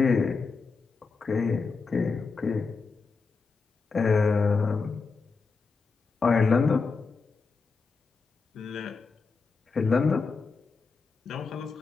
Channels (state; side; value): quieter; right; 4.6 dB